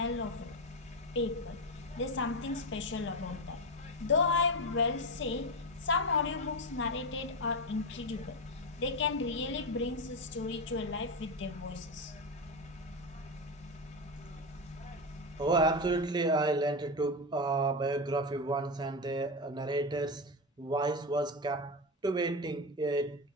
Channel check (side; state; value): both; normal; correlation 0.15